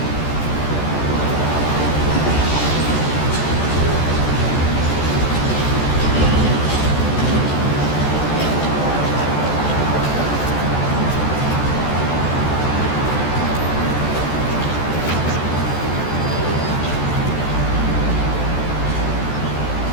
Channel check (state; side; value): late; right; 14 ms